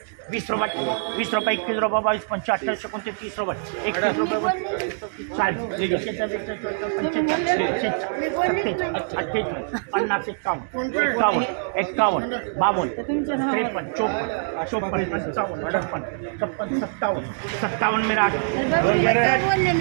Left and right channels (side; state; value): left; silent; digital silence